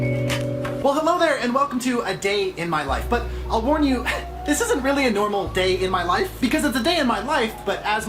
Well, hello there, and welcome to A Day in My Life. But I'll warn you, this isn't really a normal day in my life, because it's a day in my life, but as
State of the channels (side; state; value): both; identical; correlation 1.00